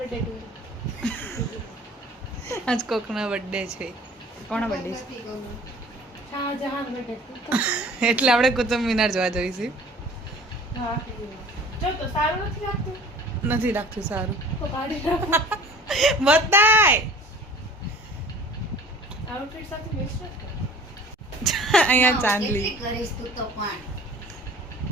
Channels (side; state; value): both; normal; correlation 0.47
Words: આજ કોકનો બર્થડે છે. કોનો બર્થડે છે? એટલે આપણે કુતુબ મિનાર જોવા જઈશું. નથી લાગતું સારું. બતાય અહીંયા ચાંદલી